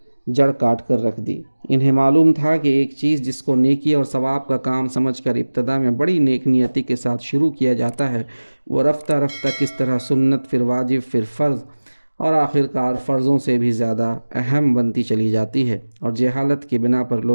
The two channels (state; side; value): inverted; both; correlation -1.00